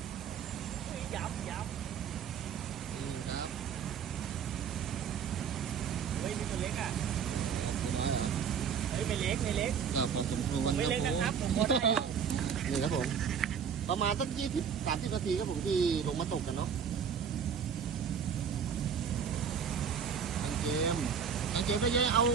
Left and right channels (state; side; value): quieter; left; 7.1 dB